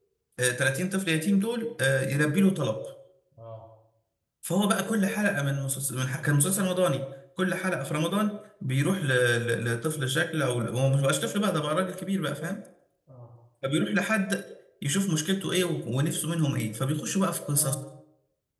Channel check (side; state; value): both; identical; correlation 1.00